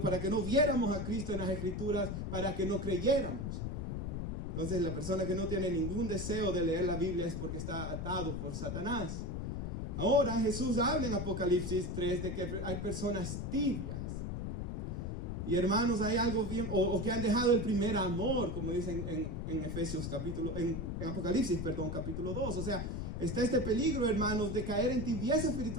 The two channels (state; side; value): noise; left; rumble, 3 dB below the sound